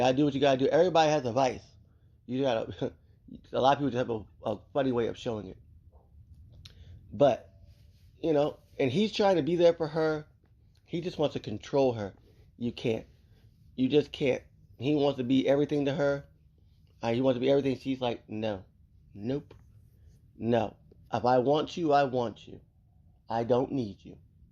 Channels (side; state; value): both; identical; correlation 1.00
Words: do what you gotta do. Everybody has a vice. You gotta. A lot of people just have a funny way of showing it. But and he's trying to be there for her. He just wants to control her. You can't. You just can't. He wants to be everything to her. He wants to be everything. She's like, no. Nope. No. If I want you, I want you. I don't need you.